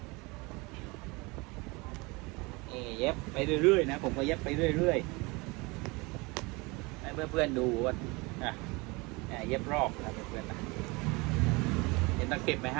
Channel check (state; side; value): quieter; left; 25.7 dB